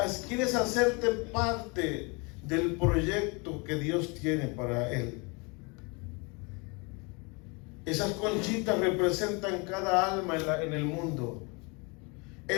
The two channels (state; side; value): quieter; right; 30.1 dB